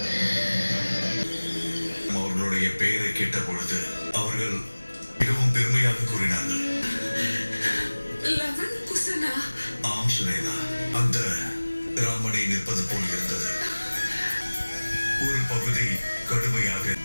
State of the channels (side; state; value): both; inverted; correlation -1.00